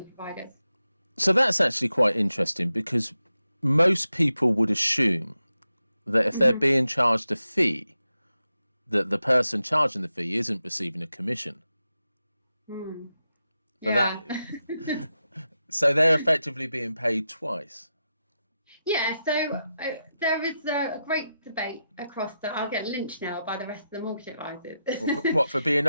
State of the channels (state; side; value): inverted; both; correlation -0.89